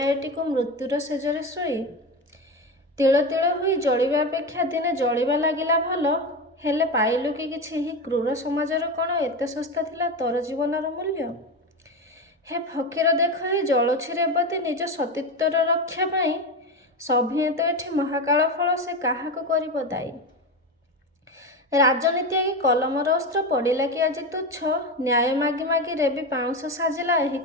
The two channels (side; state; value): both; normal; correlation 0.20